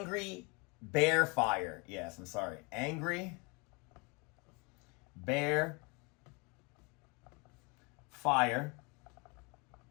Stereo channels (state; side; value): quieter; right; 29.7 dB